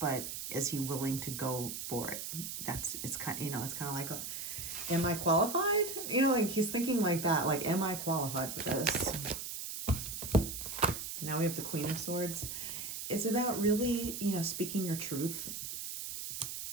is he willing to go for it? It's kind of like, am I qualified? You know, like he's thinking like that, like, am I qualified for this? Now we have the Queen of Swords. It's about really, you know, speaking your truth.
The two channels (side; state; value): right; noise; hiss, 6 dB below the sound